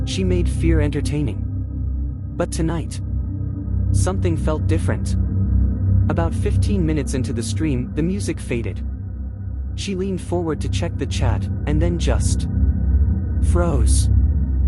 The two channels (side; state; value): both; identical; correlation 1.00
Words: She made fear entertaining. But tonight, something felt different. About 15 minutes into the stream, the music faded. She leaned forward to check the chat, and then just froze.